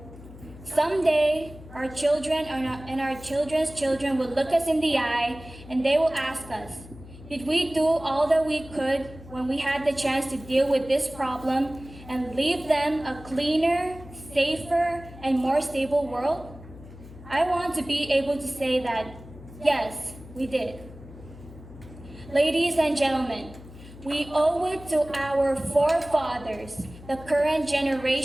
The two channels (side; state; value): left; noise; hum, 17 dB below the sound